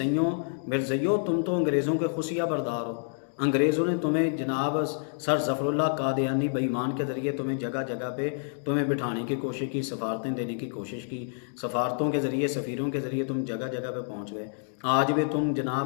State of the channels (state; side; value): silent; right; digital silence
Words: تم تو انگریزوں کے خفیہ بردار ہو۔ انگریزوں نے تمہیں جناب سر ظفر اللہ قادیانی بے ایمان کے ذریعے تمہیں جگہ جگہ پہ تمہیں بٹھانے کی کوشش کی، سفارتیں دینے کی کوشش کی، سفارتوں کے ذریعے سفیروں کے ذریعے تم جگہ جگہ پہ پہنچ گئے۔ آج بھی تم